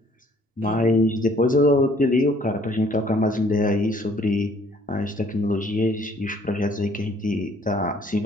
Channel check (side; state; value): both; normal; correlation 0.59